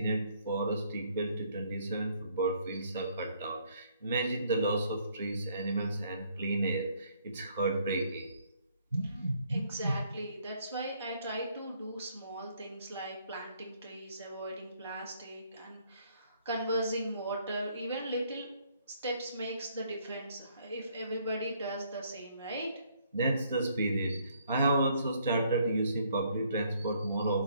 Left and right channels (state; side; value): inverted; both; correlation -0.67